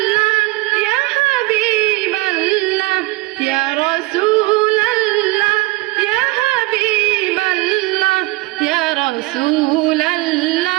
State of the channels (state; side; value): quieter; left; 22.0 dB